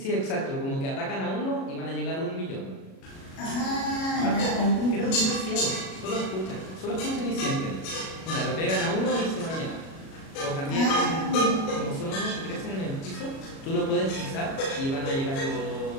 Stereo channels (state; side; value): late; right; 37 ms